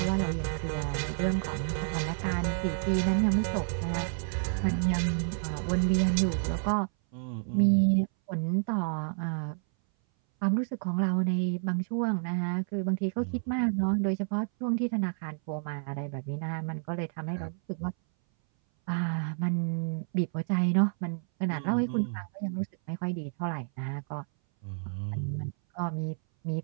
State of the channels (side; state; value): left; silent; 58 dB below the other